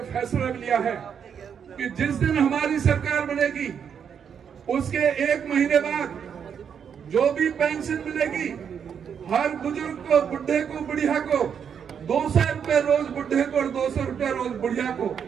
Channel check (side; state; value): left; quieter; 7.5 dB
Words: फैसला लिया है कि जिस दिन हमारी सरकार बनेगी उसके 1 महीने बाद जो भी पेंशन मिलेगी हर बुजुर्ग को, बुढ़े को, बुढ़िया को 200 रुपए रोज बुढ़े को और 200 रुपए रोज बुढ़िया को